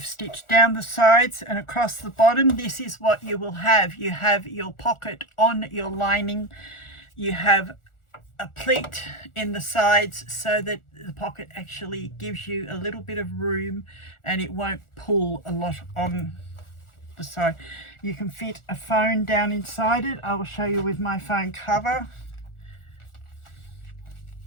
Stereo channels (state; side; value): late; right; 1.4 ms